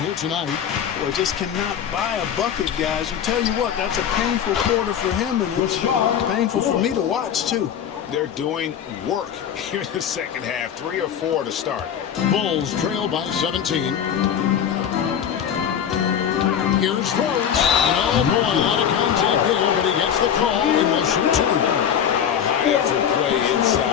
tonight. Well, just cannot buy a bucket, guys. I tell you what, that's a painful quarter for him, and it's painful for me to watch, too. They're doing work here in the second half. 3 or 4 to start. Bulls trail by 17. Here's Rose. And oh boy, a lot of contact there, but he gets the call and will shoot 2. A high effort play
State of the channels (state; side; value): quieter; right; 8.8 dB